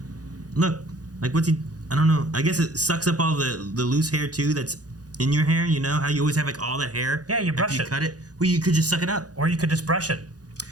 look, like, what's he, I don't know. I guess it sucks up all the loose hair, too, that's in your hair, you know? How you always have, like, all that hair? Yeah, you brush after you cut it. Well, you could just suck it up. Or you could just brush it.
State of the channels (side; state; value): left; late; 0.68 ms